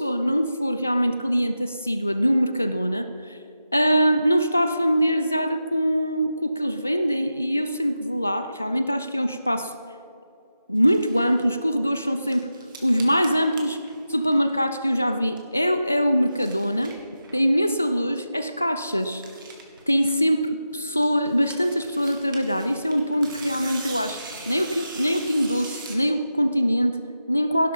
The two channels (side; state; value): both; inverted; correlation -0.91